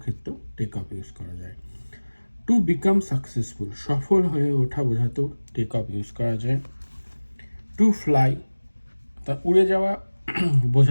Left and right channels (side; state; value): both; inverted; correlation -1.00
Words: ক্ষেত্রেও টেক অফ ইউজ করা যায়। টু বিকাম সাকসেসফুল, সফল হয়ে ওঠা বোঝাতেও টেক অফ ইউজ করা যায়। টু ফ্লাই, তা উড়ে যাওয়া